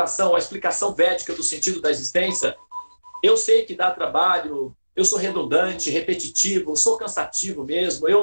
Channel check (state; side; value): inverted; both; correlation -1.00